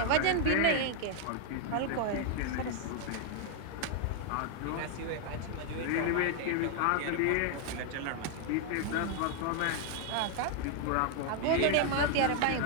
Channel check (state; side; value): different; both; correlation 0.00